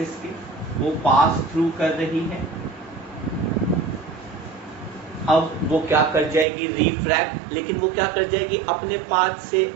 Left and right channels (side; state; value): left; drops out; at 6.5 s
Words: के, वो पास थ्रू कर रही है। अब वो क्या कर जाएगी, रिफ्रैक्ट, लेकिन वो क्या कर जाएगी, अपने पाथ से